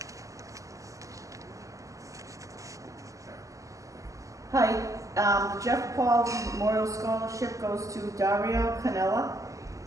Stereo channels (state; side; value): late; left; 0.16 ms